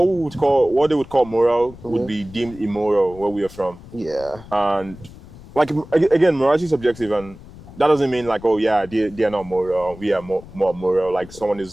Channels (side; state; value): left; noise; rumble, 19 dB below the sound